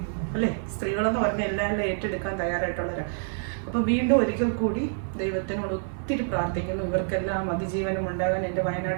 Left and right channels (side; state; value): left; silent; digital silence